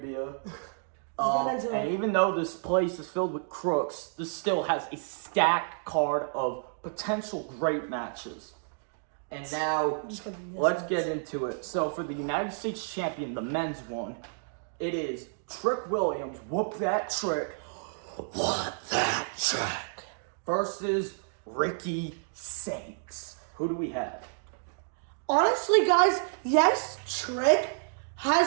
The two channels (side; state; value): left; silent; digital silence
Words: And even though this place is filled with crooks, this still has a stacked card of potential great matches. And now, let's get into it. So for the United States Champion, the men's one, it is Trick Williams, Whoop That Trick, What that trick? versus Ricky Saints. Who do we have? Honestly, guys, yes, Trick